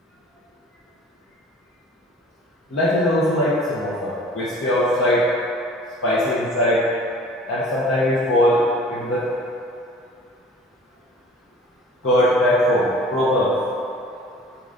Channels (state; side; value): normal; both; correlation 0.47